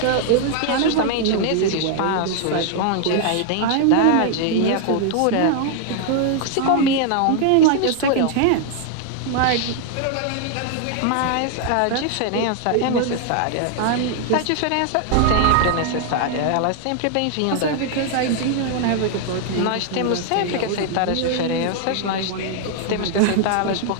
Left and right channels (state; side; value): different; both; correlation 0.00